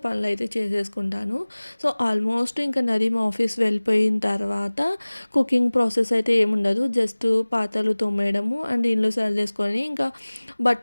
పనులైతే చేసేసుకుంటాను. సో ఆల్మోస్ట్ ఇంకా నదీం ఆఫీస్ వెళ్ళిపోయిన తర్వాత కుకింగ్ ప్రాసెస్ అయితే ఏముండదు. జస్ట్ పాత్రలు తోమేయడము అండ్ ఇల్లు సర్దేసుకొని ఇంకా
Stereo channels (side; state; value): both; inverted; correlation -1.00